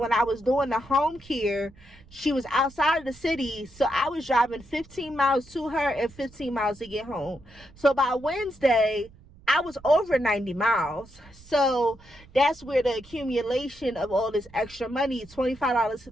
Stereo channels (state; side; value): noise; right; rumble, 24 dB below the sound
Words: I was doing the home care, she was outside of the city, so I was driving 15 miles to her and 15 miles to get home. So by Wednesday, I was over 90 miles. So that's where the accumulation of all this extra money, $25,